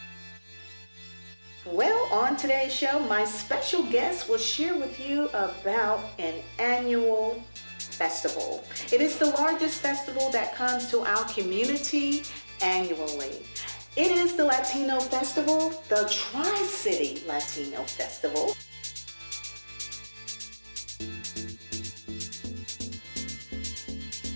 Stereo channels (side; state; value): both; inverted; correlation -1.00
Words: Well, on today's show, my special guest will share with you about an annual festival. It is the largest festival that comes to our community annually. It is the Latino Festival, the Tri-City Latino Festival.